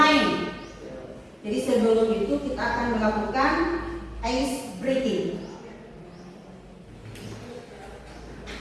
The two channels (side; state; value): both; identical; correlation 1.00